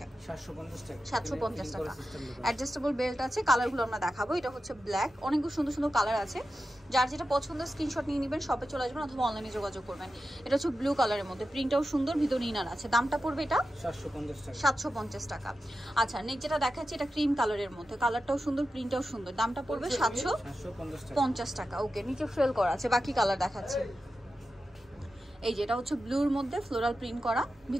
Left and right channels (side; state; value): both; normal; correlation 0.91